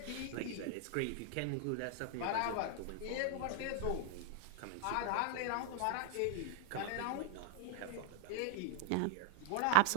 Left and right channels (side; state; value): both; different; correlation 0.00